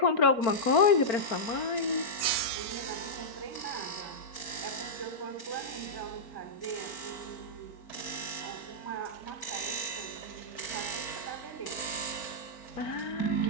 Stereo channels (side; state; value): right; late; 4.4 ms